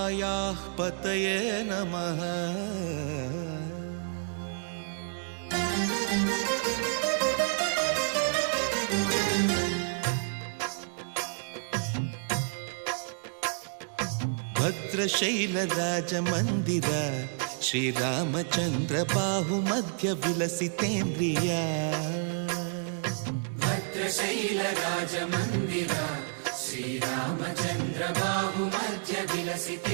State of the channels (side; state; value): left; silent; digital silence